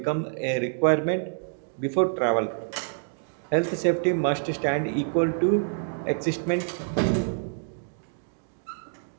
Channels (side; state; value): left; silent; digital silence